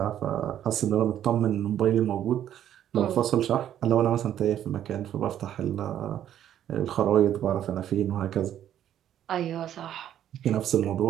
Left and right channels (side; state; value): left; quieter; 10.8 dB